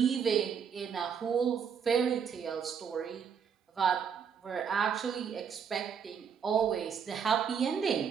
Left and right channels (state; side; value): quieter; left; 7.1 dB